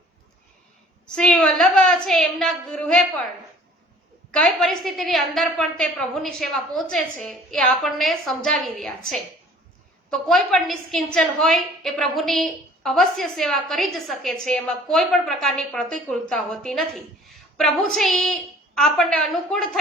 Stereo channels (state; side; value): normal; both; correlation 0.52